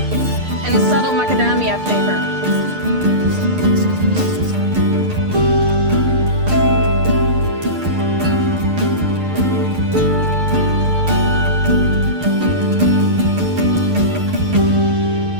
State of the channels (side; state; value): left; late; 6.6 ms